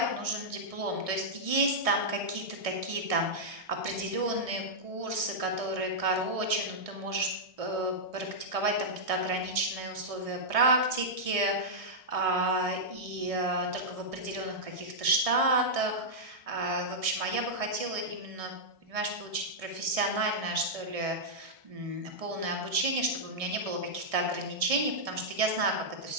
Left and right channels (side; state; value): left; late; 1.6 ms